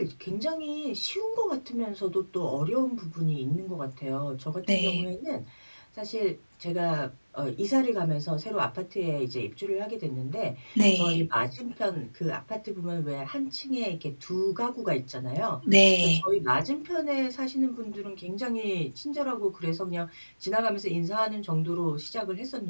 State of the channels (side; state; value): both; inverted; correlation -1.00